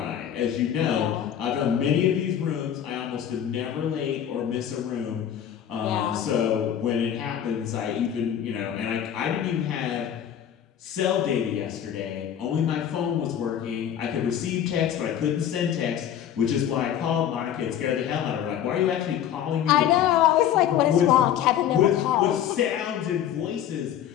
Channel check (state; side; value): quieter; right; 9.9 dB